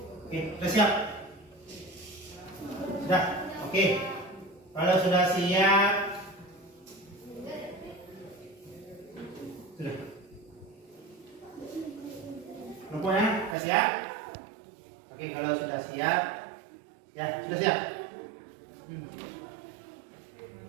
Oke, sudah siap? Sudah? Oke. Kalau sudah siap, sudah. Rupanya sudah siap? Oke, kalau sudah siap, ya sudah siap.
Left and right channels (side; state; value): left; drops out; at 13.6 s